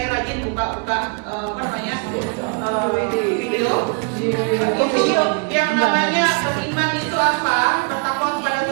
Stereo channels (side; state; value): left; quieter; 35.7 dB